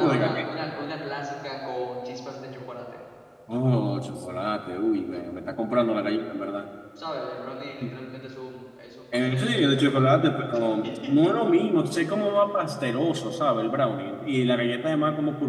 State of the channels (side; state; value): both; identical; correlation 1.00